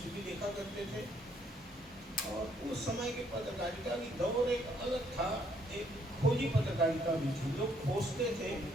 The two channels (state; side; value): normal; both; correlation 0.68